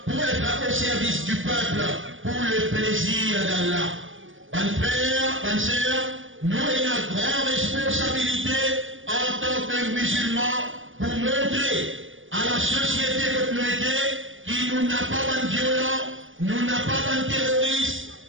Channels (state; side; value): late; left; 0.57 ms